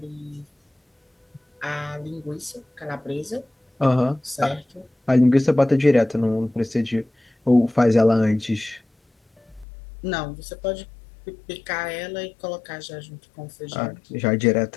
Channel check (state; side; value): drops out; right; at 9.7 s